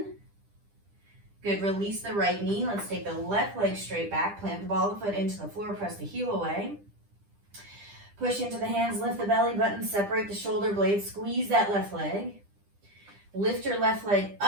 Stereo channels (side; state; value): left; late; 10 ms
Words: Good, release the right knee. Let's take the left leg straight back, plant the ball of the foot into the floor, press the heel away. Push into the hands, lift the belly button, separate the shoulder blades, squeeze that left leg. Lift your left leg